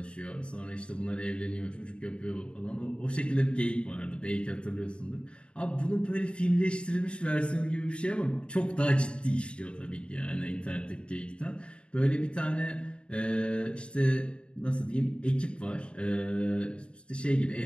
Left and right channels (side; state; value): right; late; 0.056 ms